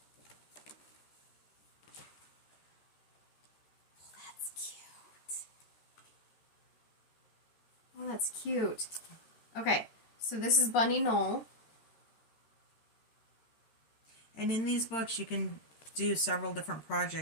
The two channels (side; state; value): right; late; 14 ms